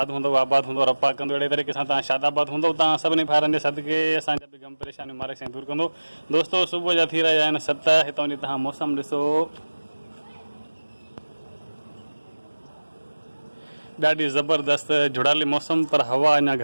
हूंदो, आबाद हूंदो, रब्बा कंदो अहिड़े तरीक़े सां तव्हां शादाबाद हूंदो। तव्हां सभिनी भाउरनि जे सदिके असांजा बि गम परेशानियूं मालिक साईं दूरि कंदो। दोस्तों सुबुह जा थी रहिया आहिनि 7। हितां जी तव्हां मौसम ॾिसो, ॾाढी ज़बरदस्त जुड़ाली मौसम, पर हवा अञा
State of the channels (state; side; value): inverted; both; correlation -1.00